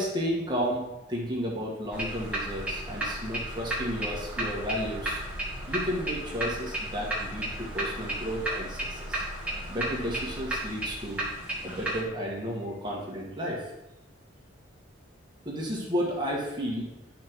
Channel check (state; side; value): normal; both; correlation 0.37